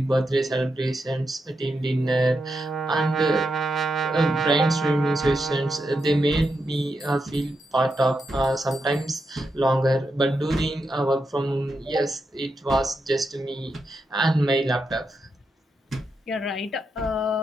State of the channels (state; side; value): normal; both; correlation 0.85